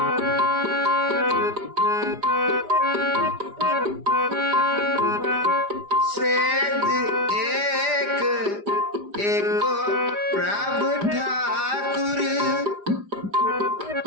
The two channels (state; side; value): late; left; 4.9 ms